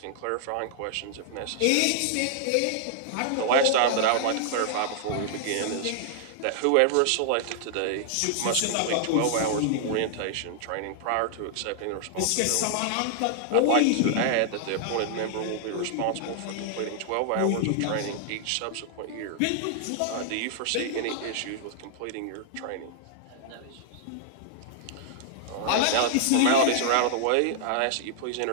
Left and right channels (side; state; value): both; different; correlation -0.01